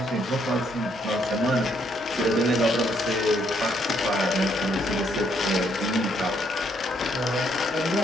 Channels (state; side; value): normal; both; correlation 0.71